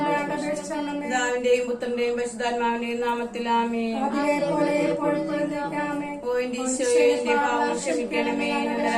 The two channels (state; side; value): identical; both; correlation 1.00